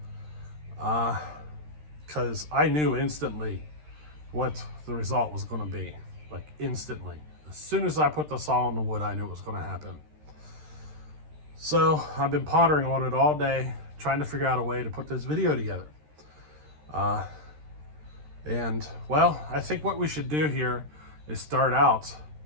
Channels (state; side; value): late; left; 13 ms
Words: because I knew instantly what the result was going to be, like instantly. As soon as I put the saw on the wood, I knew it was going to happen. So I've been pondering on it all day, trying to figure out a way to put this video together. And well, I think what we should do here is start out